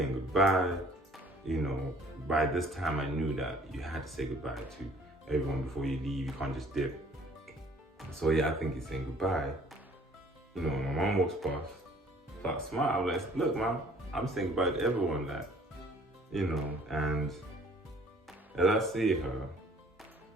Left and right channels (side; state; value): both; normal; correlation 0.56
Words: goodbye. By this time I knew that you had to say goodbye to everyone before you leave, you can't just dip. So yeah, I think he's saying goodbye. My mom walks past, so I smile, I'm like, look, mom, I'm saying goodbye to everyone, that, and as I see her,